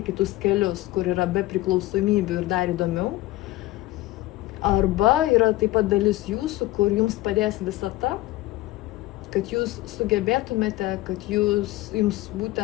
kitus kelius, kur yra be priklausomybių ir dar įdomiau. Arba yra taip pat dalis jūsų, kur jums padės visata, kad jūs sugebėtumėte, kad jums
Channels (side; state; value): right; quieter; 17.7 dB